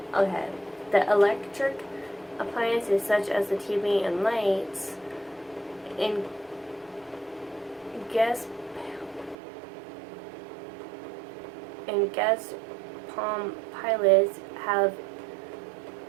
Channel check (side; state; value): left; drops out; at 9.3 s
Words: Okay. The electric appliances such as the TV and lights in guest Palm pilots have